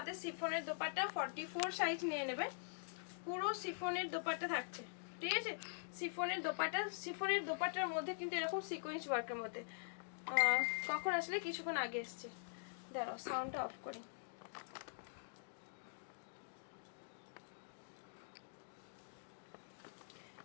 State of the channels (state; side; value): silent; right; digital silence